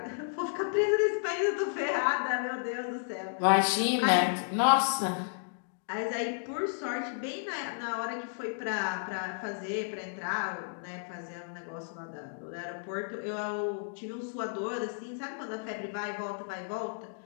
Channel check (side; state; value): right; silent; digital silence